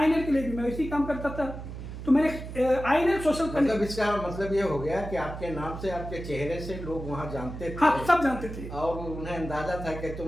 के लिए भी मैं वैसे ही काम करता था। तो मैंने आईएनएल सोशल मतलब इसका मतलब ये हो गया कि आपके नाम से, आपके चेहरे से लोग वहाँ जानते थे। हाँ, सब जानते थे और उन्हें अंदाजा था कि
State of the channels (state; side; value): noise; right; hum, 9 dB below the sound